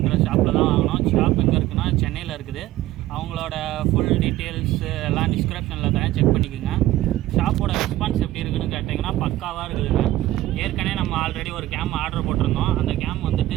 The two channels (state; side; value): quieter; left; 15.4 dB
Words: ஷாப்பில் தான் வாங்கினோம். ஷாப் எங்கே இருக்குன்னா சென்னையில் இருக்குது. அவங்களோட ஃபுல் டீட்டெயில்ஸ் எல்லாம் டிஸ்கிரிப்ஷனில் தரேன், செக் பண்ணிக்கோங்க. ஷாப்போட ரெஸ்பான்ஸ் எப்படி இருக்குதுன்னு கேட்டிங்கன்னா பக்காவாக இருக்குதுங்க. ஏற்கனவே நம்ம ஆல்ரெடி ஒரு கேம் ஆர்டர் போட்டிருந்தோம். அந்த கேம் வந்துட்டு